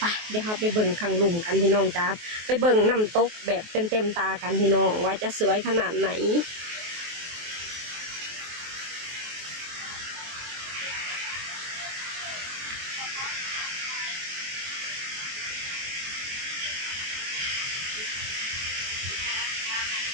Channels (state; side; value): late; left; 23 ms